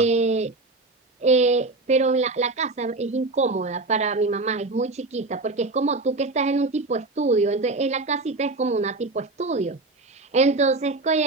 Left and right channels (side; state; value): left; quieter; 3.3 dB